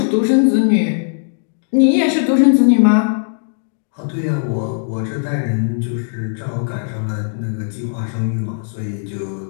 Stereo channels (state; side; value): silent; right; digital silence